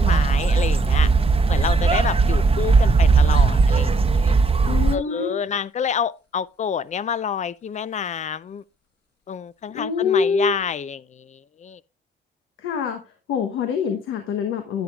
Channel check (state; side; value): normal; both; correlation 0.66